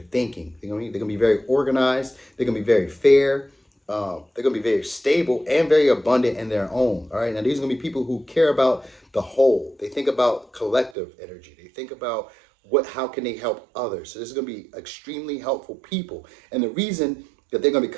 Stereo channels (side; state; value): left; drops out; at 11.0 s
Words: They're gonna be very organized. They're gonna be very fair. They're gonna be very stable and very abundant in their own. All right. Now these are gonna be people who care about the whole. They think about collective energy. They think about how can they help others. So this is gonna be extremely helpful people. And the reason that they're gonna be